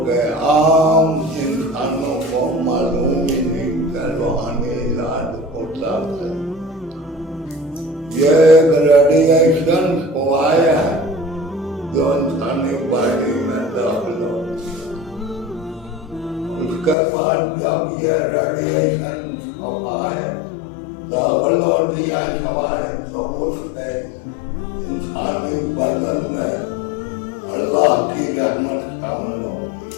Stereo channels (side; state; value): right; drops out; at 16.9 s